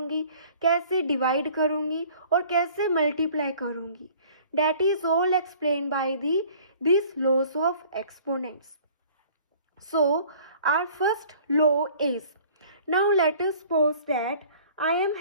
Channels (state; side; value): inverted; both; correlation -0.51